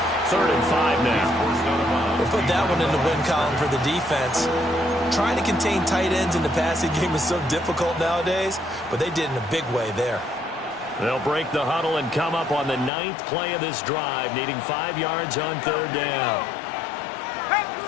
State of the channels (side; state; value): right; drops out; at 12.9 s